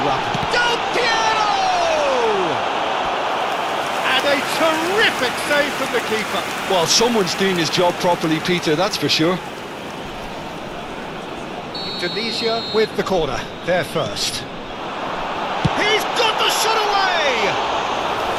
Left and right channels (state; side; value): identical; both; correlation 1.00